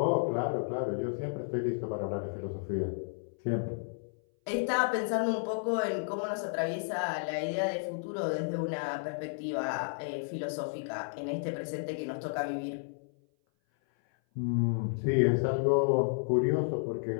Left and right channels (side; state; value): right; silent; 56 dB below the other